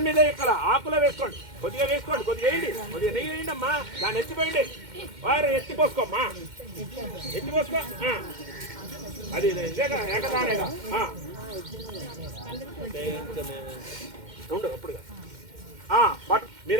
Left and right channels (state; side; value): late; left; 2.1 ms